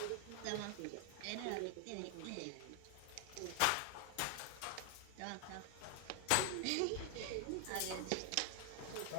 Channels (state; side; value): different; both; correlation 0.00